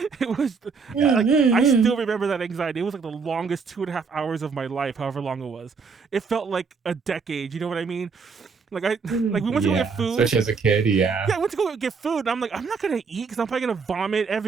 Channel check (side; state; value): left; quieter; 5.1 dB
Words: It was like I still remember that anxiety. It was like the longest 2.5 hours of my life, however long it was. It felt like a decade, you know what I mean? Like we went to go Yeah, get food. especially as a kid. Yeah. Yeah, I went to go get food, and I'm like, I'm not gonna eat because I'm probably gonna vomit